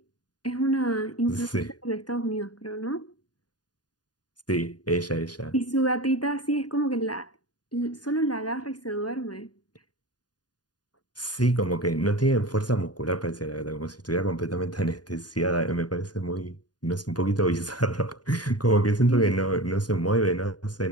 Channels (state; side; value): late; right; 0.69 ms